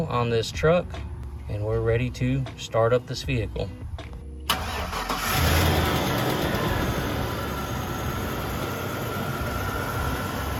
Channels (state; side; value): identical; both; correlation 1.00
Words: on this truck and we're ready to start up this vehicle.